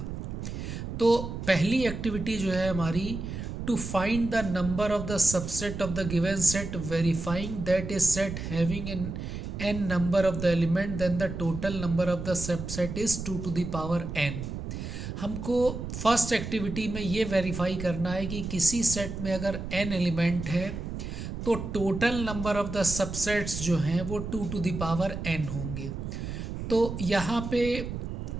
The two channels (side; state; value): right; noise; rumble, 6 dB below the sound